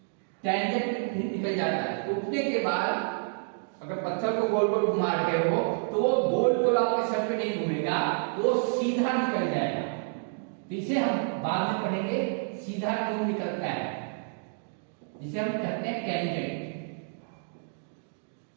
टेंजेंट निकल जाता है। टूटने के बाद अगर पत्थर को गोल गोल घुमा रहे हो तो वो गोल गोल आपके सर पे नहीं घूमेगा, वो सीधा निकल जाएगा। इसे हम बाद में पढ़ेंगे सीधा क्यों निकलता है, जिसे हम कहते हैं टेंजेंट।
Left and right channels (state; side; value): silent; left; digital silence